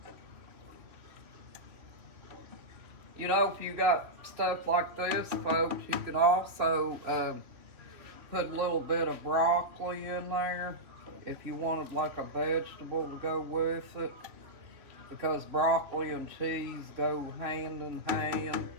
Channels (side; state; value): left; late; 3.0 ms